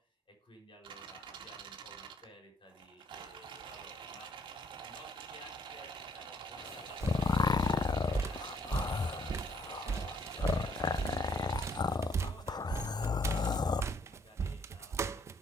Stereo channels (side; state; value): both; normal; correlation 0.67